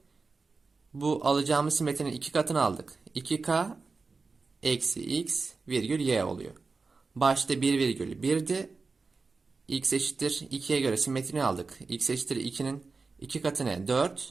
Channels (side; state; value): left; quieter; 4.3 dB